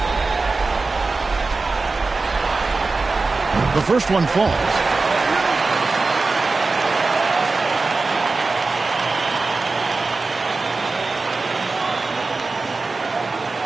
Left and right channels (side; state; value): left; quieter; 3.8 dB